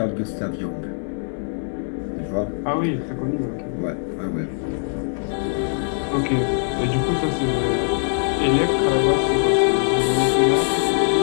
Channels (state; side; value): silent; right; digital silence